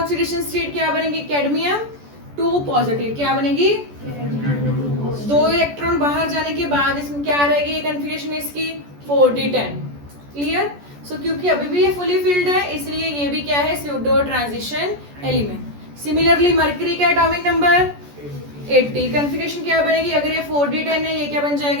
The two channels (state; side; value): late; left; 14 ms